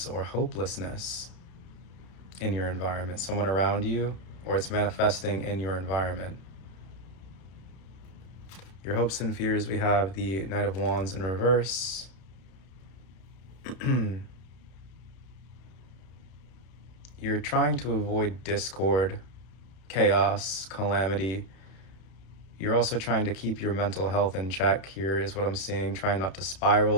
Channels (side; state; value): right; late; 32 ms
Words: or hopelessness in your environment, someone around you, or it's manifesting in your environment. Your hopes and fears, we have the Knight of Wands in reverse. You're trying to avoid discord, chaos, calamity. You're also trying to keep your mental health in check here is what I'm seeing. Trying not to